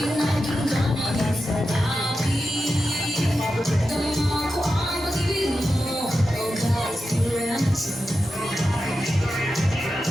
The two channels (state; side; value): normal; both; correlation 0.90